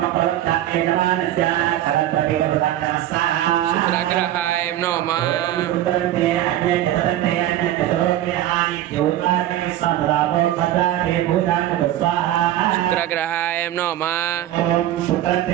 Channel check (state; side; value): quieter; left; 13.1 dB